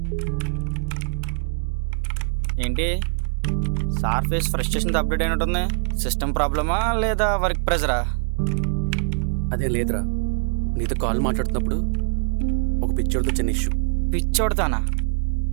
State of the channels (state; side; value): silent; left; 59 dB below the other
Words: ఏంటి సార్ ఫేస్ ఫ్రస్ట్రేషన్తో అప్డేట్ అయినట్టుంది. సిస్టమ్ ప్రాబ్లమా లేదా వర్క్ ప్రెజరా? అదేం లేదురా, నీతో కాల్ మాట్లాడుతున్నప్పుడు ఒక పిక్చర్తో చిన్న ఇష్యూ. పిచ్చోడతానా?